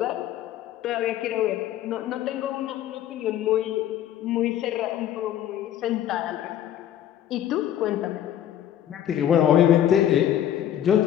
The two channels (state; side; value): quieter; right; 11.0 dB